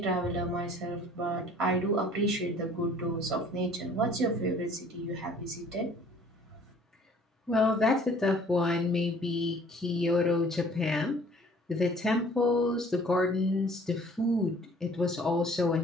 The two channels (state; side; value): normal; both; correlation 0.54